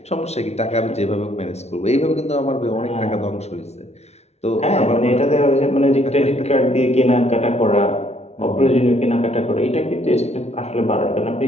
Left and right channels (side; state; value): right; late; 0.31 ms